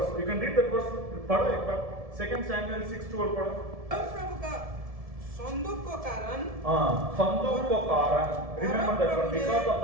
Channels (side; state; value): left; late; 1.7 ms